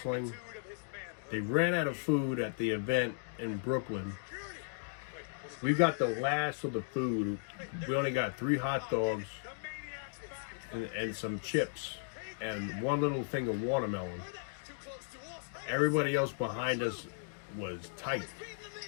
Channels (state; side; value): silent; right; digital silence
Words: They ran out of food at the event in Brooklyn. We got the last of the food. We only got 3 hot dogs and some chips and 1 little thing of watermelon. Everybody else behind us was tight.